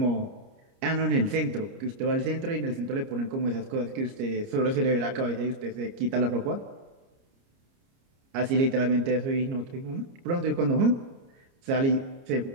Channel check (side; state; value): left; late; 30 ms